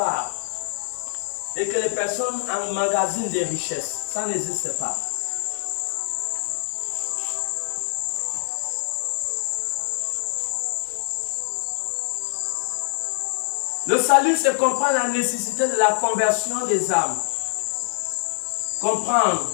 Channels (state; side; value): silent; right; digital silence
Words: Et que les personnes emmagasinent des richesses. Ça n'existe pas. Le salut, c'est comprendre la nécessité de la conversion des âmes. Comprendre